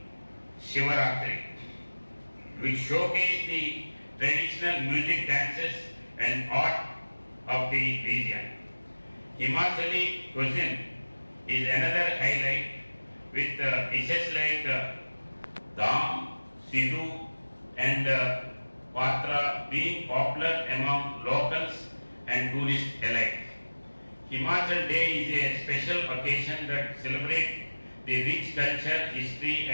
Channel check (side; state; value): both; inverted; correlation -1.00